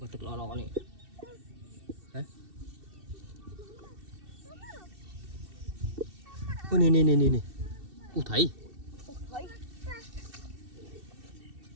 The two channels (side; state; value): left; late; 2.7 ms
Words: thực lo này. Hả? Ôi nè. Ủa thấy.